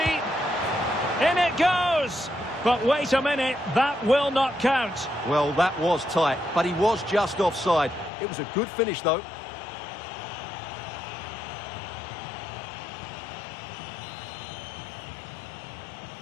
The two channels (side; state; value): right; drops out; at 8.1 s